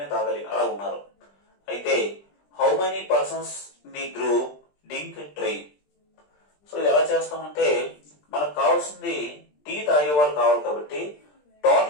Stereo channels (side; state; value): right; late; 20 ms